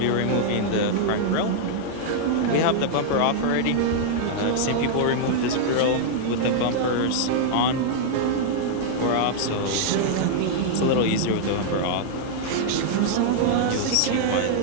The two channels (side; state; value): both; different; correlation -0.01